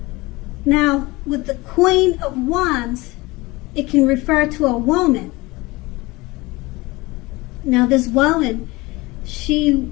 Now, with the Queen of Wands, it can refer to a woman. Now, this woman, she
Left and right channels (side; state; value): right; quieter; 22.2 dB